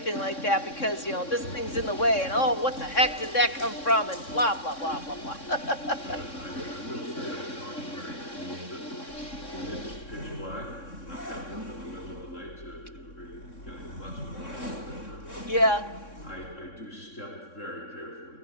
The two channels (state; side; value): late; right; 3.6 ms